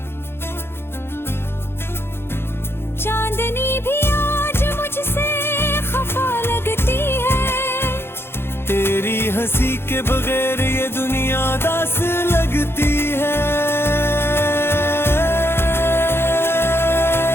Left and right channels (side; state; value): right; late; 0.11 ms